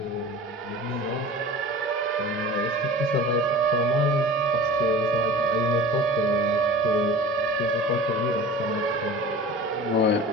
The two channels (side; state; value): both; normal; correlation 0.38